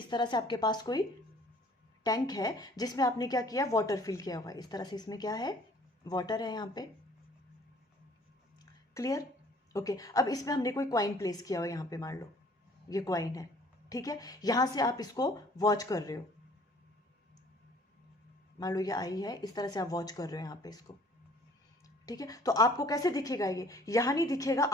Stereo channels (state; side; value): normal; both; correlation 0.55